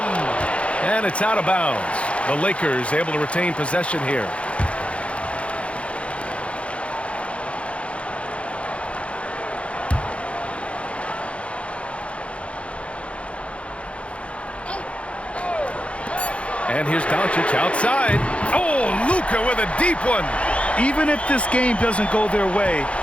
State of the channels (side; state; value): right; late; 0.061 ms